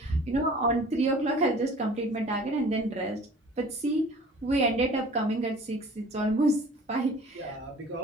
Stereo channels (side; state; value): both; normal; correlation 0.46